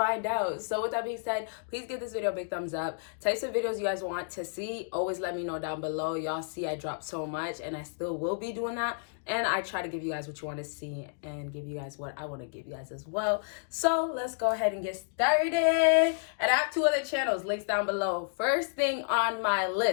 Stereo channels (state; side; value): silent; right; digital silence